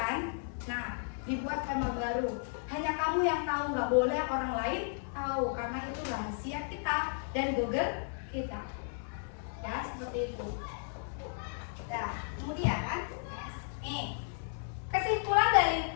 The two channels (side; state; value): right; silent; 55 dB below the other